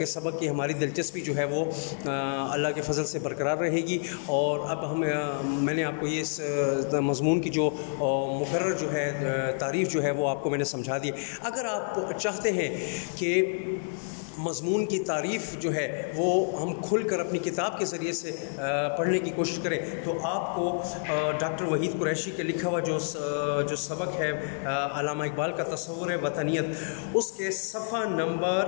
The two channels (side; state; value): right; silent; digital silence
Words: سبق کی ہماری دلچسپی جو ہے وہ اللہ کے فضل سے برقرار رہے گی، اور اب میں نے آپ کو یہ مضمون کی جو مقرر جو ہے تعریف جو ہے وہ آپ کو میں نے سمجھا دی۔ اگر آپ چاہتے ہیں کہ مضمون کی تعریف جو ہے وہ ہم کھل کر اپنی کتاب کے ذریعے سے پڑھنے کی کوشش کریں، تو آپ کو ڈاکٹر وحید قریشی کے لکھا ہوا جو سبق ہے علامہ اقبال کا تصور وطنیت، اس کے صفحہ